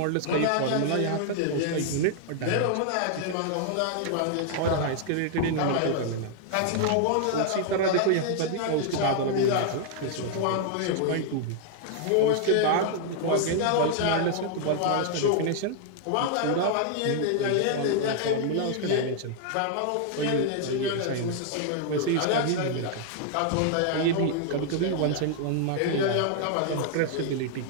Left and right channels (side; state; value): both; different; correlation 0.00